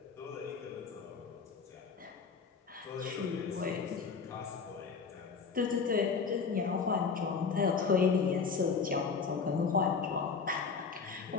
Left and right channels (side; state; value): right; quieter; 5.4 dB